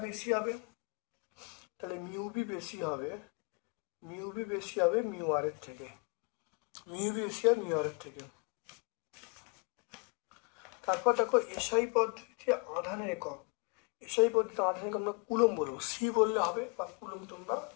বেশি হবে? তাহলে মিউ বি বেশি হবে মিউ আর এর থেকে। তারপর দেখো এসআই পদ্ধতিতে আধানের একক। আমরা কুলম বলবো, সি বললে হবে, বা কুলম তোমরা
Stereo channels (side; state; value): right; quieter; 33.7 dB